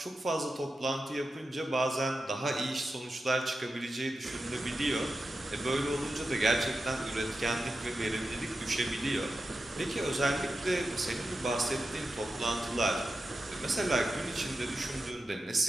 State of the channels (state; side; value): normal; both; correlation 0.91